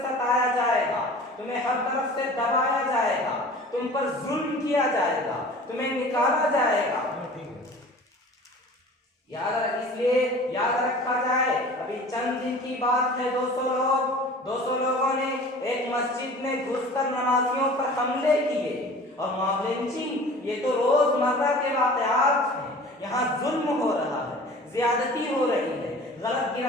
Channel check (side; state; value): both; normal; correlation 0.43